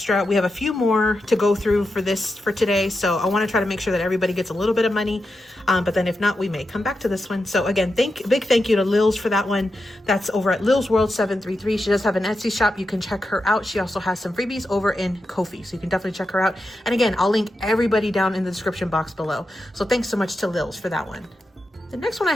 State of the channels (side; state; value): both; normal; correlation 0.88